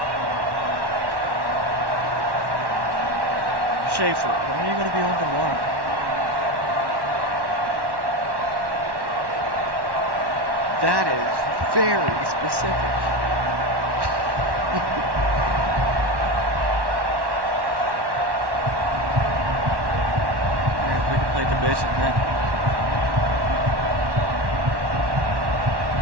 Schaefer, when are you going to be home tomorrow? That is very specific. We can play division then.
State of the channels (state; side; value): late; left; 1.1 ms